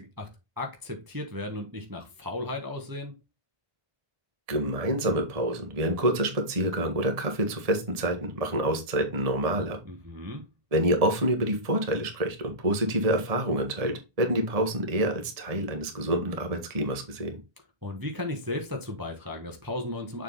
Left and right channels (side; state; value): left; late; 1.7 ms